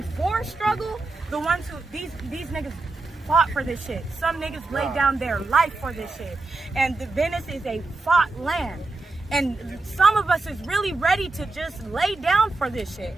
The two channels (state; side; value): quieter; left; 3.3 dB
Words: before struggle, the ones who, these niggas fought for this shit. Some niggas laid down their life for this shit. And the Venice is a fought land. And some of us is really ready to just lay down for this shit